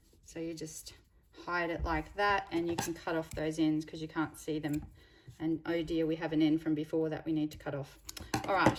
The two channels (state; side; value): identical; both; correlation 1.00